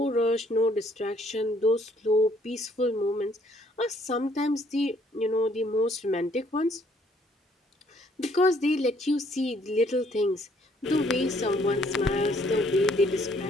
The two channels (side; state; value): both; normal; correlation 0.65